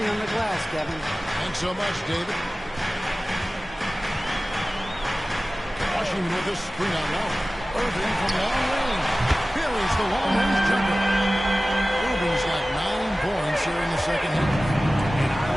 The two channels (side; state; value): both; normal; correlation 0.97